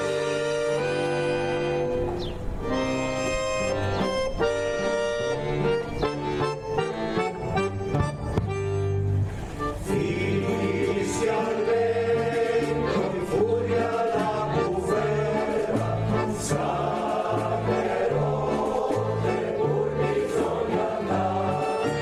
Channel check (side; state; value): both; identical; correlation 1.00